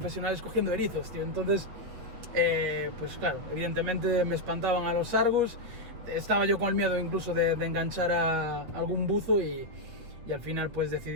cogiendo erizos, tío. Entonces, pues claro, evidentemente me espantaban a los sargos. Estaba yo con el miedo incluso de enganchar a algún buzo, y al final pues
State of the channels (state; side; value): late; left; 8.8 ms